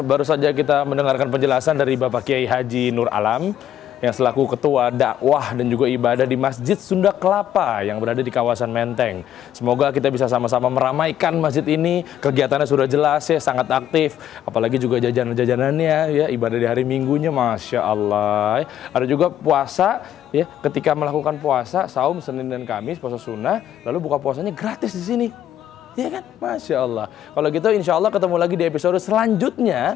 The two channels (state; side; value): quieter; right; 11.1 dB